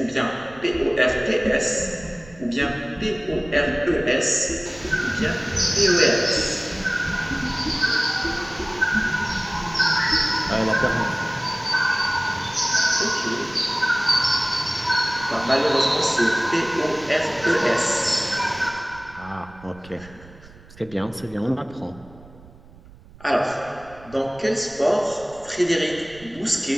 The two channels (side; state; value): right; noise; rumble, 22 dB below the sound